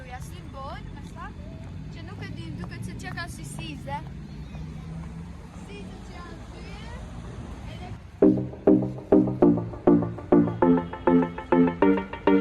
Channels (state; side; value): identical; both; correlation 1.00